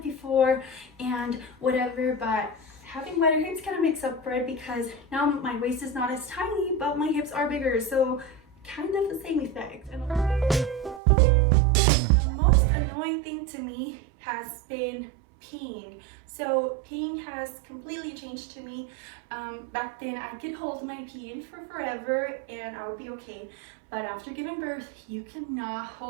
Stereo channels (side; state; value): left; drops out; at 11.0 s